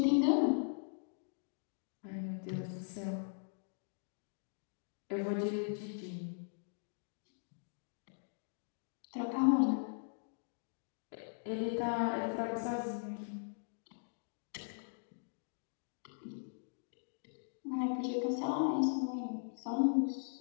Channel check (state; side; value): silent; right; digital silence